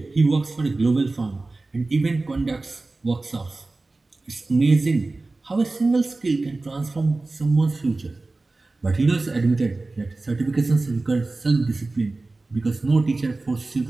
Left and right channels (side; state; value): left; quieter; 3.3 dB